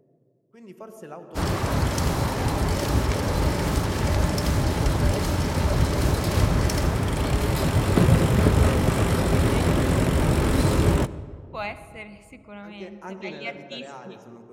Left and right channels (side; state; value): both; identical; correlation 1.00